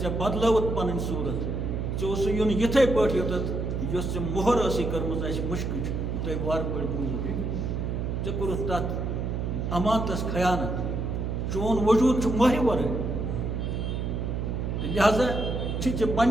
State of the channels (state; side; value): noise; right; hum, 2 dB below the sound